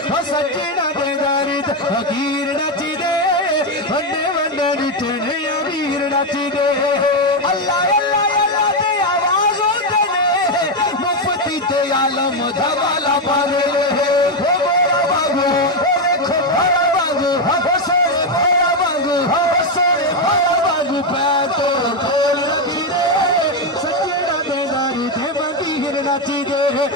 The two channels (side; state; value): both; normal; correlation 0.06